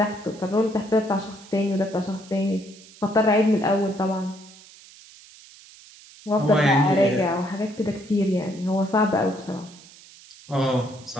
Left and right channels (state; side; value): noise; right; hiss, 22 dB below the sound